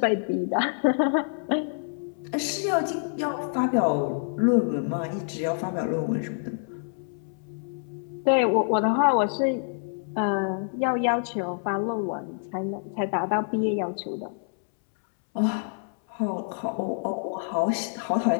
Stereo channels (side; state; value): right; silent; 60 dB below the other